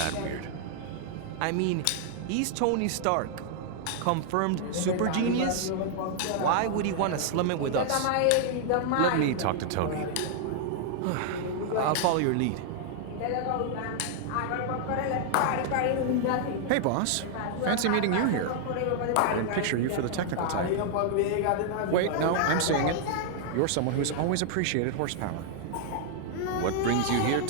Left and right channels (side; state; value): both; different; correlation 0.00